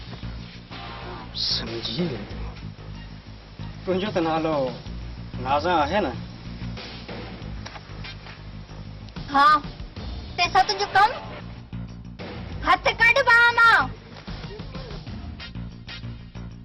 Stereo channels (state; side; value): identical; both; correlation 1.00